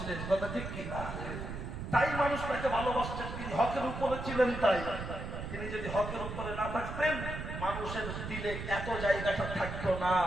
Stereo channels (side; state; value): right; noise; rumble, 6 dB below the sound